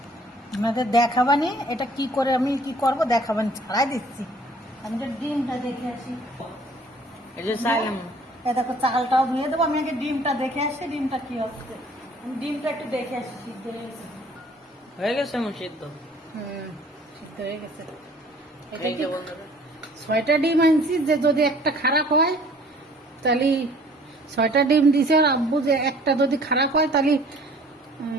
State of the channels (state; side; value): normal; both; correlation 0.54